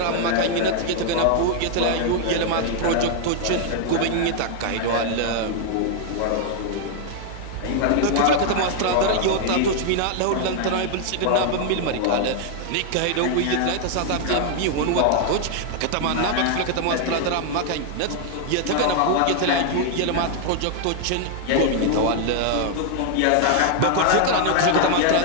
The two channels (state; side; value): different; both; correlation 0.00